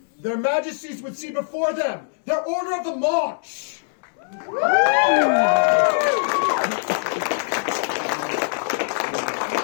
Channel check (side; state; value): right; silent; digital silence